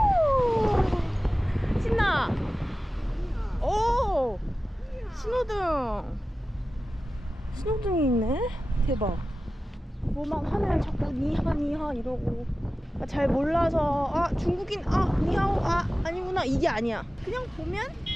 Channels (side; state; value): both; normal; correlation 0.95